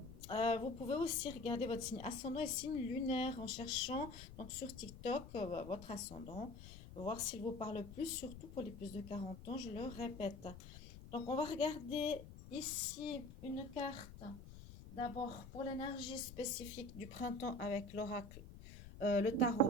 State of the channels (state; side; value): noise; left; rumble, 14 dB below the sound